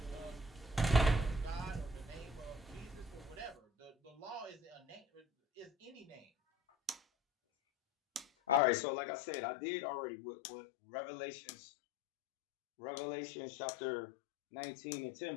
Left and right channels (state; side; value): drops out; right; at 8.6 s